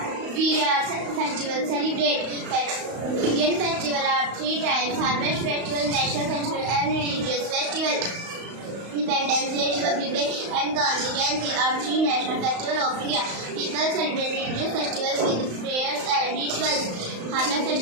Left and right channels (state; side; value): late; left; 35 ms